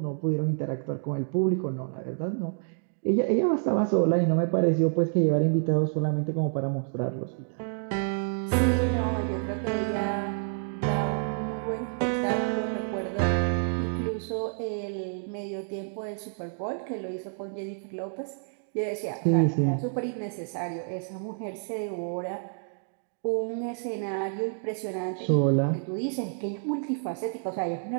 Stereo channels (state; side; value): silent; left; 59 dB below the other